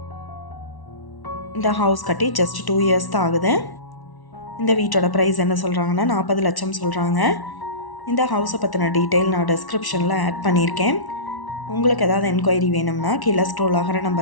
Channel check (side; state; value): right; late; 1.1 ms